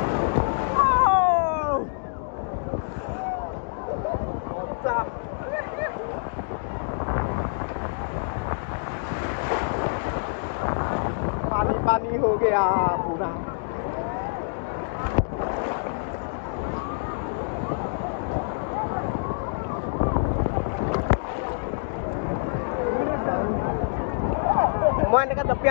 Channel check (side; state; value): right; silent; digital silence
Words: पानी पानी हो गया पूरा মই এনেকৈ